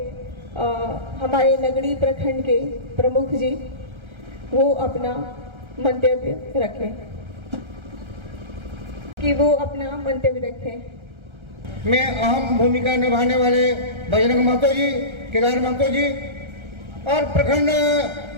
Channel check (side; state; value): left; late; 1.3 ms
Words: हमारे नगरी प्रखंड के प्रमुख जी, वो अपना मंतव्य रखें, कि वो अपना मंतव्य रखें। में अहम भूमिका निभाने वाले बजरंग महतो जी, केदार महतो जी और प्रखंड